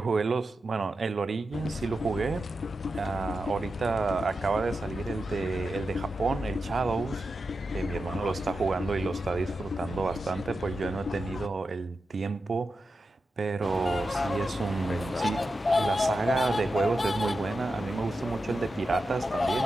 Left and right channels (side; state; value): both; normal; correlation 0.90